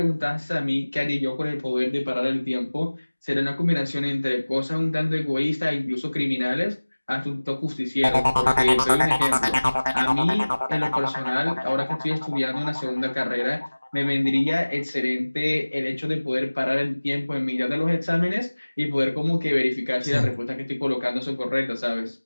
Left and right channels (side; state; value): both; inverted; correlation -1.00